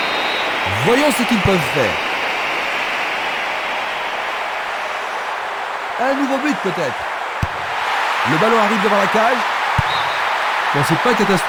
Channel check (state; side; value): identical; both; correlation 1.00